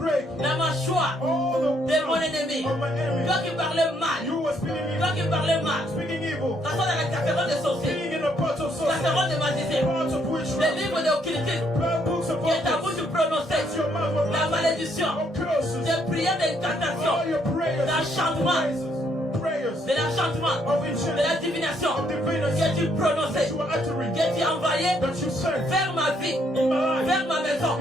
la mâchoire all the de mon ennemi. of my enemy. Toi qui parlais mal. You were speaking Toi evil. qui parlais mal. Speaking evil. T'assois dans la casserole de sorciers. Being in the pot of sorcery. Casserole de magicien. Parts of Les witchcraft. livres de occultisme. Blood books of Qui est à vous prophets. de prononcer. Your mouth of La malédiction. of curses. Des prières All d'incantation. your prayers. L'enchantement. Prayers. De l'enchantement. Of De enchantment. la divination. Of divinity. Que tu prononçais. You are uttering. Que tu envoyais That you sent vers ma vie. in my life. Vers ma maison.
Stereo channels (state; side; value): normal; both; correlation 0.71